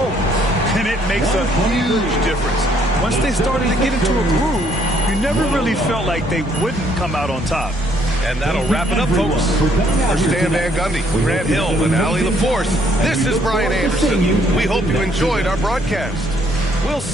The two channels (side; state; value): both; normal; correlation 0.66